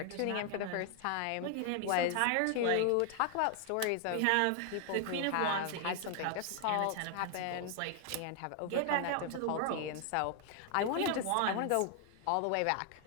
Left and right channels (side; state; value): both; different; correlation 0.00